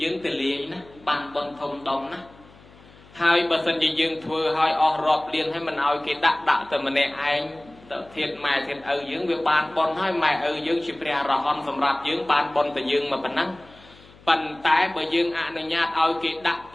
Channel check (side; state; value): left; noise; hum, 25 dB below the sound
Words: យើងទៅលាយណាបានបនធំដុំណាហើយបើសិនជាយើងធ្វើឲ្យអស់រាប់លានហើយមិនឲ្យគេដាក់តែម្នាក់ឯងទៅធាតម៉ែធាតឪយើងវាបានបនហើយម៉ែឪយើងជាព្រះរហន្តសម្រាប់យើងបានបនតែយើងមកប៉ុណ្ណឹងប៉ុន្តែបើយើងអនុញ្ញាតឲ្យគេដាក់ព